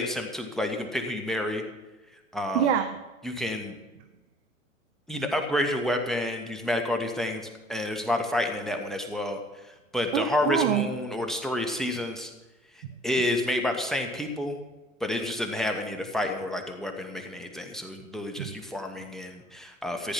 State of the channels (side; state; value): both; normal; correlation 0.53